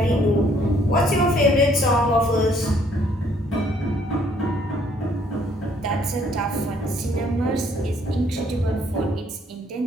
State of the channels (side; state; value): both; normal; correlation 0.64